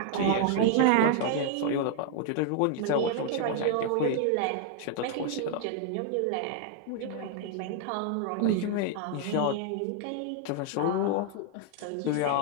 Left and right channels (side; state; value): both; different; correlation 0.00